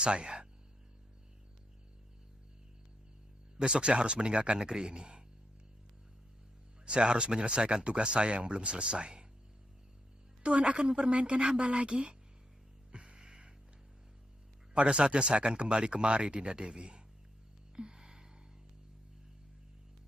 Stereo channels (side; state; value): both; normal; correlation 0.82